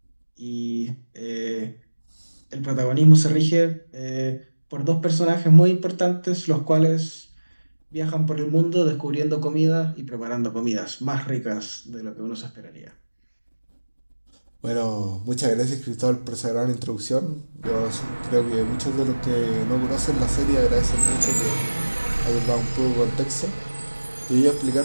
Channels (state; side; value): inverted; both; correlation -1.00